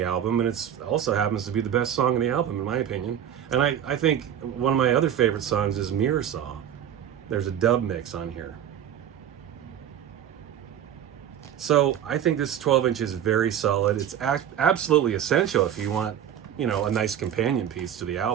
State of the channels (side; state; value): left; quieter; 9.8 dB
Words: album, and it also happens to be the best song on the album, in my opinion. And I think one of my other favorite songs is Mirror Saw. There's a dub mix on here. So I think this 12-inch is very solid. It's absolutely essential if you want, a nice companion piece to the